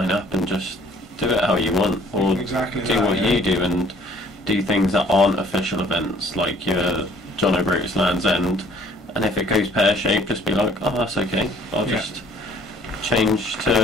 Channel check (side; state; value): both; normal; correlation 0.56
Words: up and just do it how you want, or do what you do, and do things that aren't official events, like your John O'Groats Land's End. And if it goes pear-shaped, just be like, oh, that's okay. I'll just